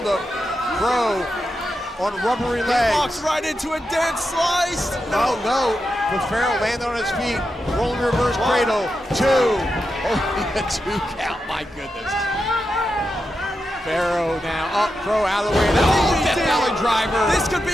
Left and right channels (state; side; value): normal; both; correlation 0.88